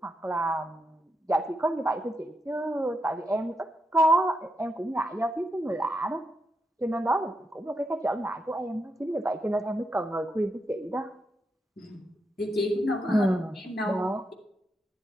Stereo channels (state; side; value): normal; both; correlation 0.83